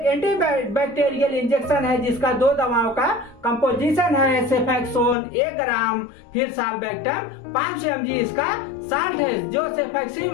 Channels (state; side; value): drops out; right; at 5.2 s